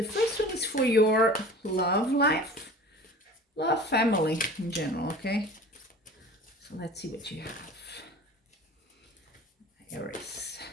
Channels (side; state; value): both; normal; correlation 0.41